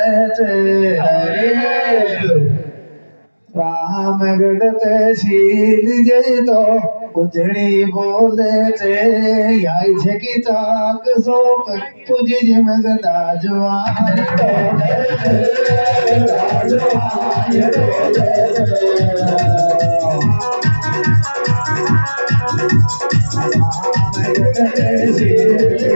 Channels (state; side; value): inverted; both; correlation -1.00